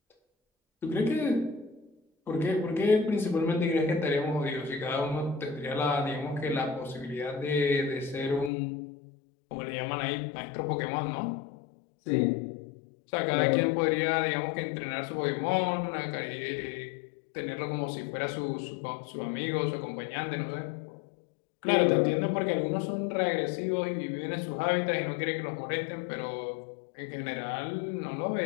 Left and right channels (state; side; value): drops out; right; at 8.5 s